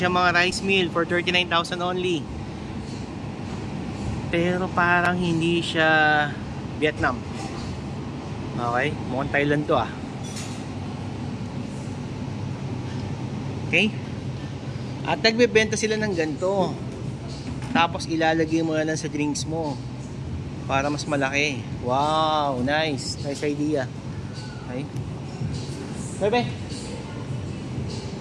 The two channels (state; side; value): identical; both; correlation 1.00